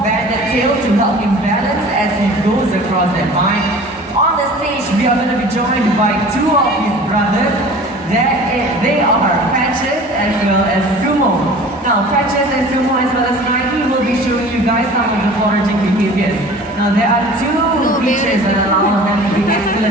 banded tail to help him balance as he goes across that vine. On the stage, we are going to be joined by two of his brothers. They are Patches as well as Sumo. Now, Patches and Sumo as well as Nike will be showing you guys some of the foraging behaviors. Now, there are two features that allow them to be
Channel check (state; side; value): normal; both; correlation 0.43